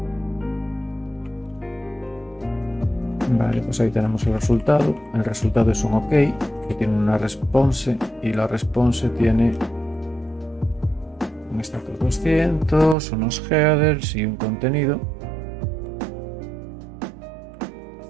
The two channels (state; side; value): drops out; left; at 13.0 s